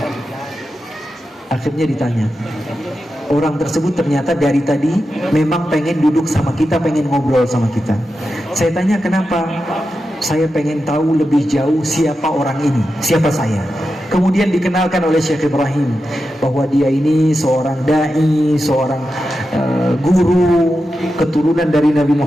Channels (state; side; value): normal; both; correlation 0.90